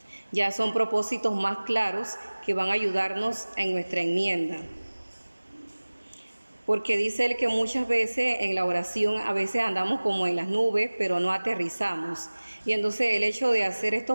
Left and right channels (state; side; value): inverted; both; correlation -1.00